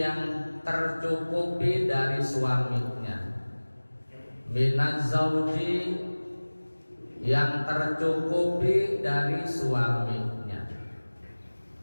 tercukupi dari suaminya, minaz zauji yang tercukupi dari suaminya.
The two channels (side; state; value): both; inverted; correlation -1.00